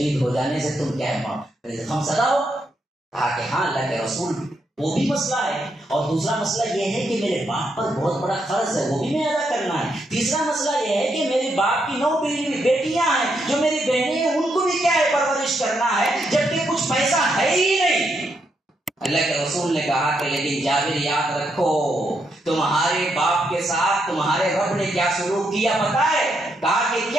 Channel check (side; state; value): both; normal; correlation 0.79